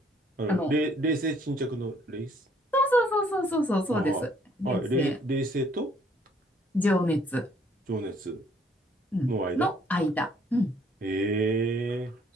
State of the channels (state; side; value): normal; both; correlation 0.63